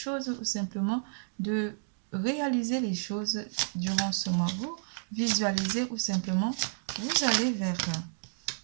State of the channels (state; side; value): silent; left; digital silence